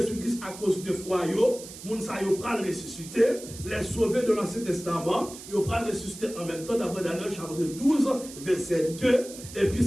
à cause de foi, les gens qui ont ressuscité, les sauvés de l'Ancien Testament, ils ont ressuscité en même temps, d'après Daniel chapitre 12, verset 2, et puis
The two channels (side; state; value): right; noise; hiss, 14 dB below the sound